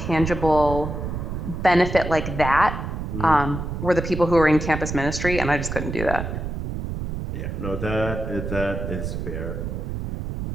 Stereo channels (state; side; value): noise; right; rumble, 5 dB below the sound